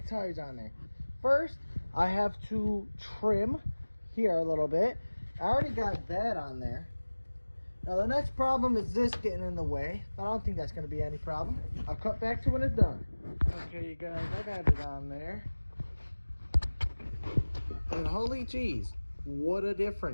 tires on there. First, I have to trim here a little bit. I already got that on there. Now, the next problem is this getting in the way, but I don't think that's going to be any problem. I'll cut back to when it's done. Okay, you guys, I got it on there. And holy jeez, what a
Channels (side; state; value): both; inverted; correlation -1.00